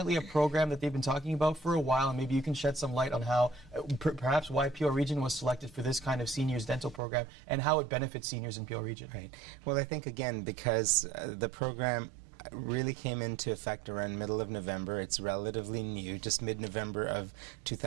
a program that they've been talking about for a while, and maybe you can shed some light on how, perhaps why Peel Region was selected for this kind of seniors dental program and how it benefits seniors in Peel Region. Right. Well, I think, again, because the program really came into effect around middle of November. It's relatively new, just mid-November of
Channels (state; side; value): drops out; left; at 7.0 s